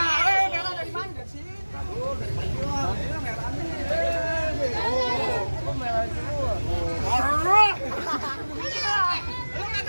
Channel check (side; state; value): both; inverted; correlation -1.00